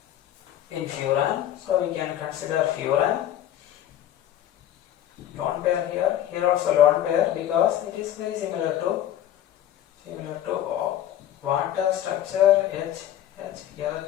in furan. So we can consider furan. Lone pair here also lone pair, because it is very similar to water structure. H here the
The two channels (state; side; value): quieter; right; 11.7 dB